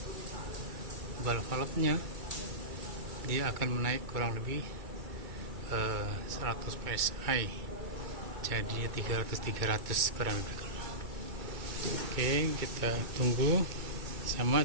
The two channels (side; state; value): left; late; 2.3 ms